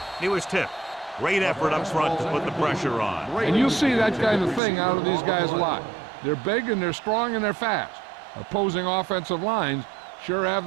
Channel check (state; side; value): drops out; left; at 4.6 s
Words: He was tipped. Great effort up front to put the pressure on. And you see that kind of thing out of these guys a lot. They're big and they're strong and they're fast. Opposing offensive lines sure have